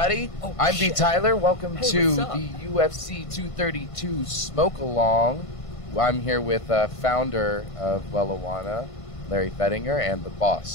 I'm imbtyler. Welcome to what's up? the UFC 232 Smokealong. I'm here with founder of Wellijuana, Larry Fettinger, and the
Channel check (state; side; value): late; right; 1.5 ms